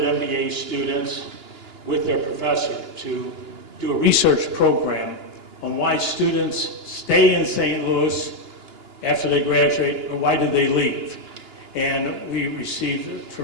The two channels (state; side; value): late; left; 2.9 ms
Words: MBA students with their professor to do a research program on why students stay in St. Louis after they graduate, or why did they leave. And we received a